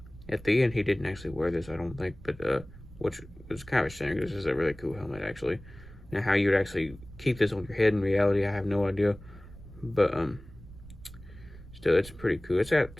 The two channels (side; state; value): right; noise; rumble, 18 dB below the sound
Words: the end he didn't actually wear this, I don't think, but which was kind of a shame, because this is a really cool helmet actually. Now, how you would actually keep this on your head in reality, I have no idea, but still, it's pretty cool. It's got